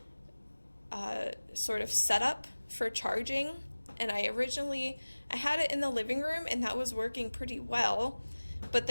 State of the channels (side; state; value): both; inverted; correlation -1.00